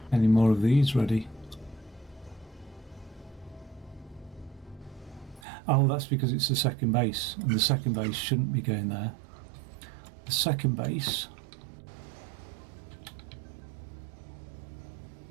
any more of these ready. Oh, that's because it's the second base, and the second base shouldn't be going there. The second base...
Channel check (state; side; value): drops out; left; at 5.4 s